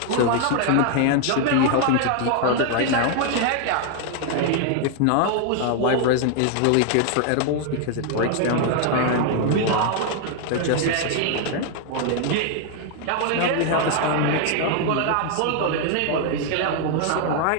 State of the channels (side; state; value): both; different; correlation 0.00